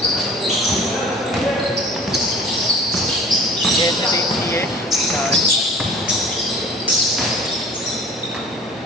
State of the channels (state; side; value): normal; both; correlation 0.46